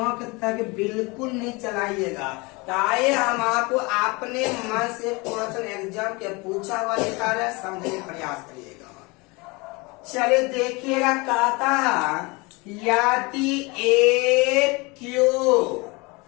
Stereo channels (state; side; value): quieter; right; 26.3 dB